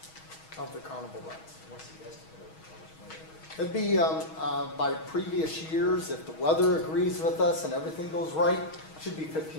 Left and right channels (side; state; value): right; late; 6.3 ms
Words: of the carnival rides. What's the estimate of how much money? It'd be by previous years, if the weather agrees with us and everything goes right, it should be